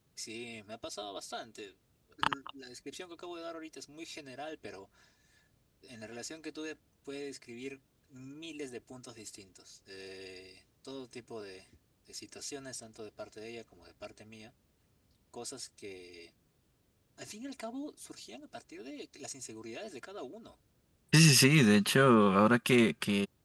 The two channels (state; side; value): identical; both; correlation 1.00